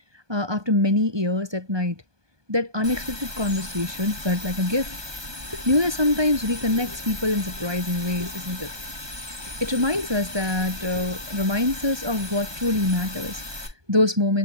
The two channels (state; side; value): late; left; 1.2 ms